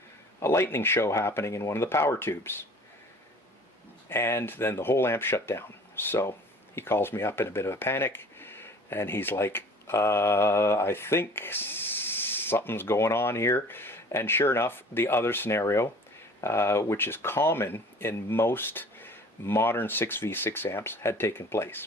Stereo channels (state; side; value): normal; both; correlation 0.47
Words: a lightning show happening in one of the power tubes, and then the whole amp shut down. So he calls me up in a bit of a panic, and he's like, I think something's going on here. And sure enough, the other scenario, which is common in most modern 6v6 amps, had taken place.